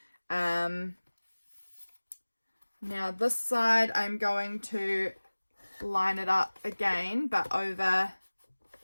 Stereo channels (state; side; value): inverted; both; correlation -1.00